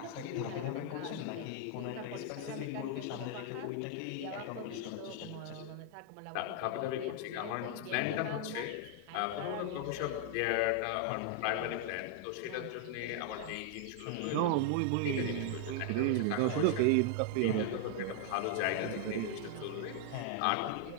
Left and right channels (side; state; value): both; different; correlation 0.00